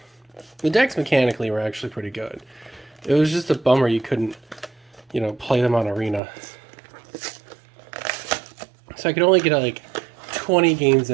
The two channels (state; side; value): drops out; left; at 6.2 s